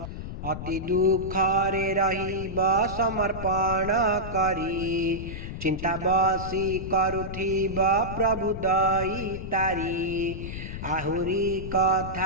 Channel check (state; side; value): noise; left; rumble, 8 dB below the sound